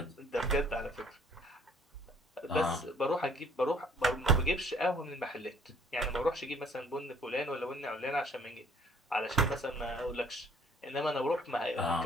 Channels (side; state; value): both; normal; correlation 0.58